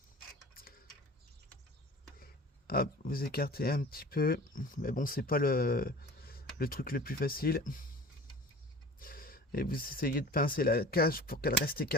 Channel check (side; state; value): both; normal; correlation 0.41